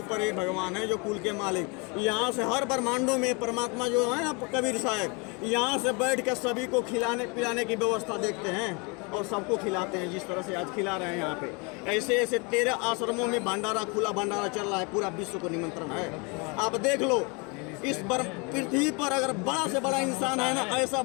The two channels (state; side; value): quieter; right; 31.0 dB